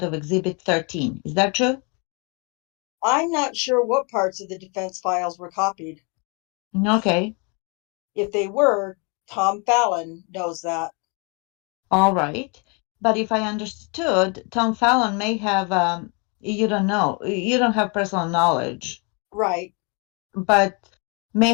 of Exhibit 13. Is that true? I'm not sure what parts of the defense files were copied. Okay, If they were, Tom Fallon knows that. all right. But if I understood, Tom Fallon may have, you don't know, you don't have personal knowledge, Right. but may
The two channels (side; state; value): right; quieter; 33.3 dB